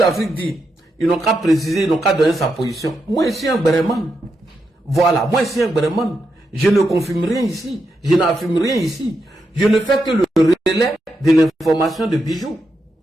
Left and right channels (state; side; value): normal; both; correlation 0.84